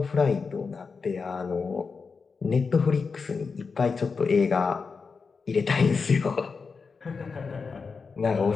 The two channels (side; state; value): right; quieter; 5.0 dB